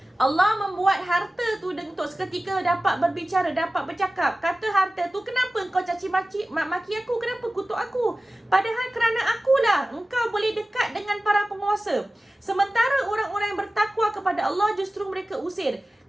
Allah membuat harta tu untuk seketika dapat berbicara, dapat bercakap. Kata harta tu, kenapa engkau caci maki aku? Kenapa kutuk aku? Padahal kerana akulah engkau boleh dekat dengan para penguasa. Sementara orang-orang yang bertakwa kepada Allah justru mereka usir.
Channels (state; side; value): normal; both; correlation 0.96